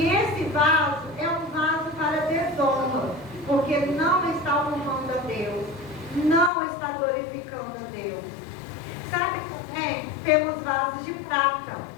esse vaso é um vaso para desonra, porque não está honrando a Deus, não está glorificando a Deus. Sabe também, temos vasos de prata.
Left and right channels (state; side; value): drops out; right; at 6.5 s